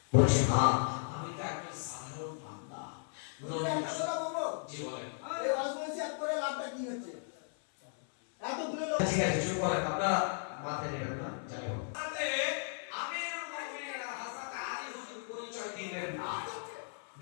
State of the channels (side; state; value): right; silent; 54 dB below the other